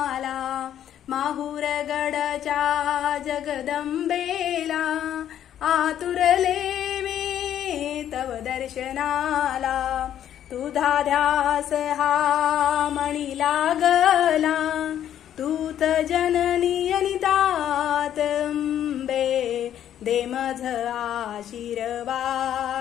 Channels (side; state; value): right; quieter; 10.6 dB